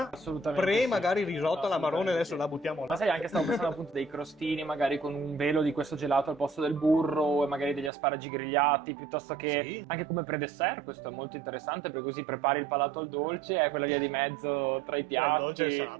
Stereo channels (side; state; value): left; drops out; at 7.9 s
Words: assolutamente pre sì. magari risotto alla marrone, adesso Sì. la buttiamo là. Ma sai, anche stavo pensando appunto dei crostini magari con un velo di questo gelato al posto del burro e magari degli asparagi grigliati, piuttosto che Sì. anche come pre-dessert. Questo è molto interessante perché così prepari il palato al dolce e quella via di mezzo tra i piatti, il dolce e il